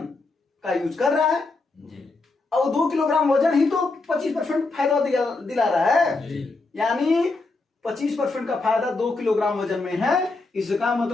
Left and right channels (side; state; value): right; quieter; 3.5 dB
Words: का यूज कर रहा है, और 2 किलोग्राम वजन ही तो 25% फायदा दिला रहा है। यानी 25% का फायदा 2 किलोग्राम वजन में है। इसका